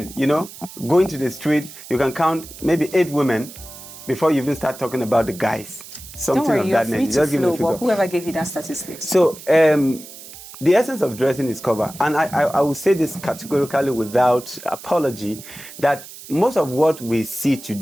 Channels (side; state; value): right; noise; hiss, 16 dB below the sound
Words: going to the street, you can count maybe 8 women before you even start talking about the guys. Something Don't worry, of you're that free nature. to flow, but whoever gave you that statistic. So, the essence of dressing is cover. And I will say this categorically without apology, that most of what we see